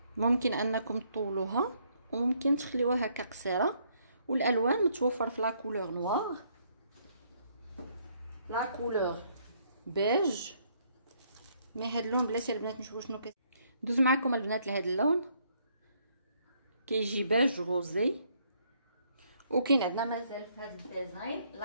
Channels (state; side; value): inverted; both; correlation -0.69